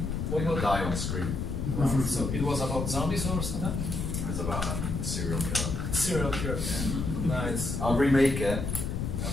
Made them die on the screen. Wow. So it was about zombies or something? It was about a serial killer. Serial killer. Yeah. Nice. I'll remake it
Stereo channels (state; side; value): noise; left; rumble, 2 dB below the sound